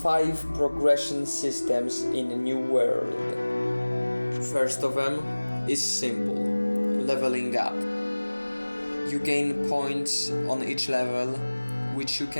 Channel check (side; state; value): both; inverted; correlation -1.00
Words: progression systems in a new world. First of them is simple, leveling up. You gain points on each level, which you